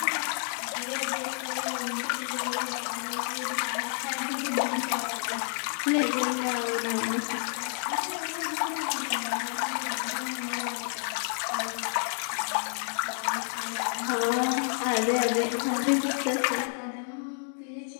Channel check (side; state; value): right; silent; 58 dB below the other